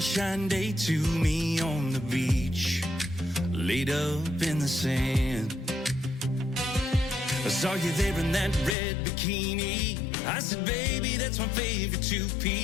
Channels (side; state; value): right; drops out; at 8.8 s